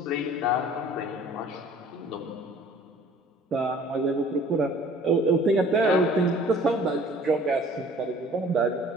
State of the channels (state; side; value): normal; both; correlation 0.51